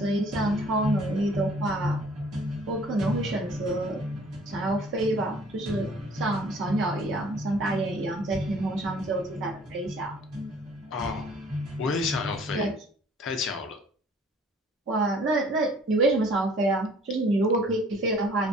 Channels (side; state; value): both; normal; correlation 0.55